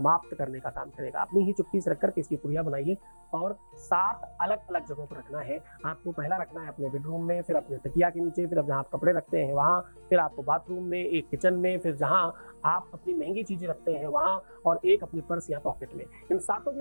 करने का काम करेगा। अपनी ही चुटकी से रख करके इसकी पुड़िया बनाइए और 7 अलग अलग जगहों पर रखना है। आपको पहला रखना है अपने बेडरूम में, फिर अपने तकिया के नीचे, फिर अब जहाँ आप कपड़े रखते हैं वहाँ, फिर आपको बाथरूम में, एक किचन में, फिर जहाँ आप अपनी महंगी चीजें रखते हैं वहाँ, और एक अपने पर्स या पॉकेट में। इन सातों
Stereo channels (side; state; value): both; inverted; correlation -1.00